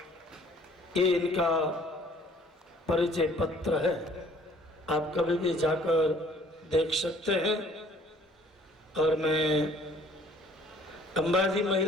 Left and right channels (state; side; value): normal; both; correlation 0.56